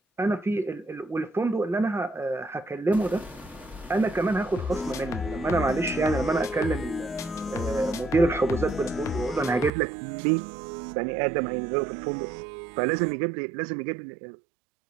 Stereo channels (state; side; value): drops out; left; at 9.7 s